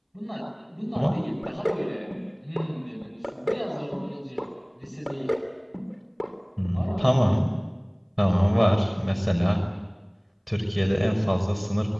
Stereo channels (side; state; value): both; identical; correlation 1.00